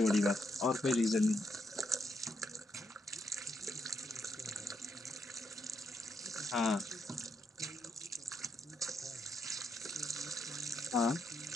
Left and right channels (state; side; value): normal; both; correlation 0.80